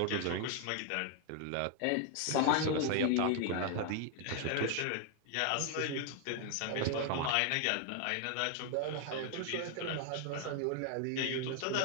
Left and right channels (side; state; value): both; different; correlation 0.00